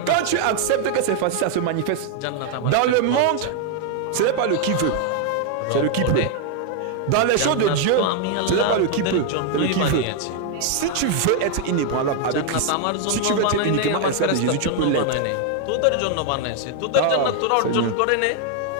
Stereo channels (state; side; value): different; both; correlation 0.00